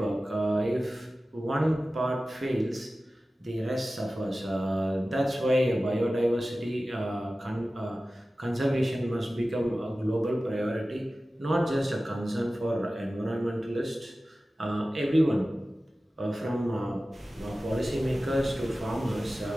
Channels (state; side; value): normal; both; correlation 0.96